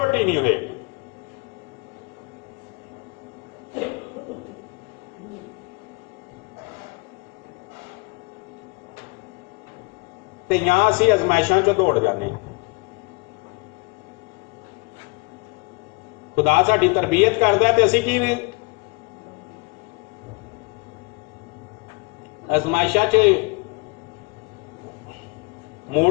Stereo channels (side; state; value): right; quieter; 28.7 dB